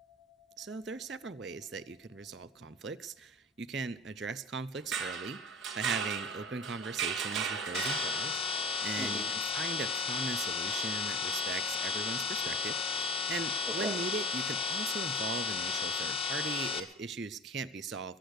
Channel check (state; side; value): normal; both; correlation 0.39